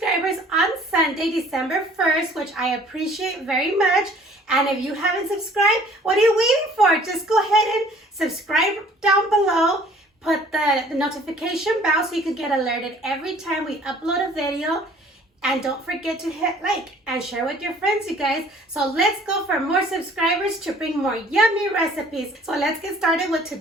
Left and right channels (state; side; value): normal; both; correlation 0.54